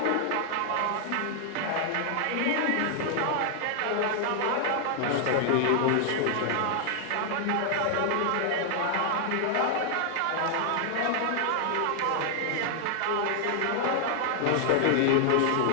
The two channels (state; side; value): different; both; correlation 0.00